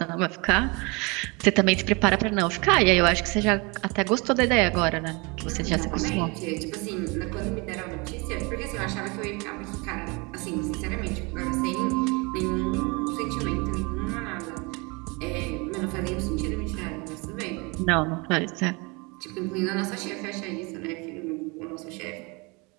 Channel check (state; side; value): quieter; left; 28.2 dB